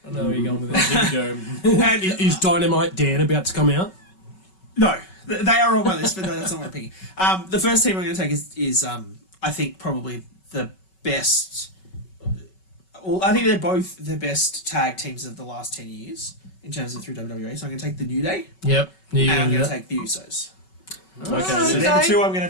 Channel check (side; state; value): right; late; 5.3 ms